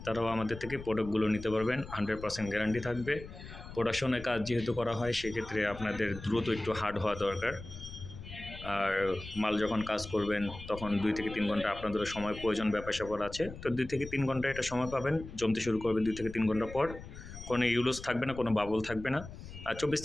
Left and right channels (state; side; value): noise; left; rumble, 13 dB below the sound